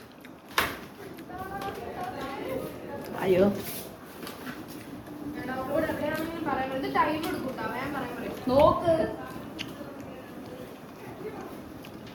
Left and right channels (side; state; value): both; identical; correlation 1.00